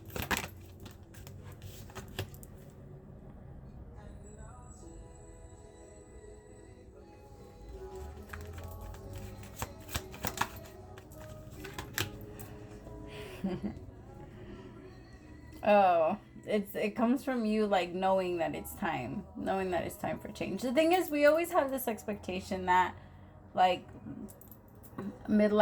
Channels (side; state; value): both; identical; correlation 1.00